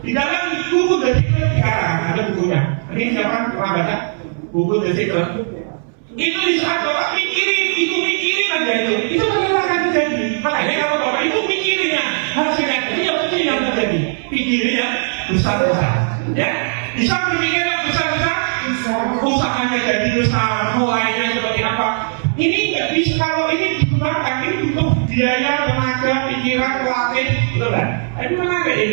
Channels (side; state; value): left; silent; 63 dB below the other